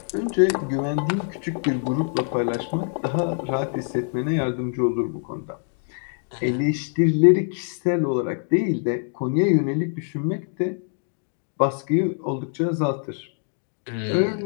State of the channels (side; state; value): right; silent; 62 dB below the other